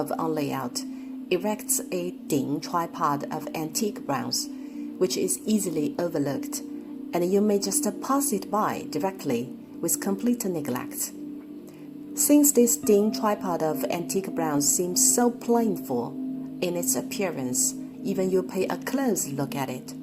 on layout, erects a Ding tripod of antique bronze, which is easily overlooked, and you may just pass it by directly with complete neglect. Since this Ding tripod of antique bronze seems so plainful in its appearance, even you pay a close look at it.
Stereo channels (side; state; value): both; identical; correlation 1.00